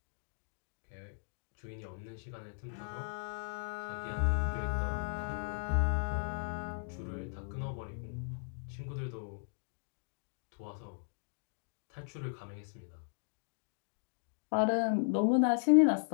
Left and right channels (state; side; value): silent; right; digital silence